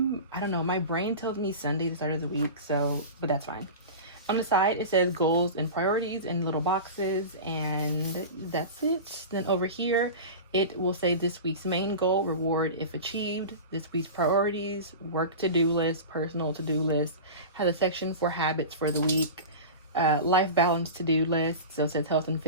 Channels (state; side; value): inverted; both; correlation -0.30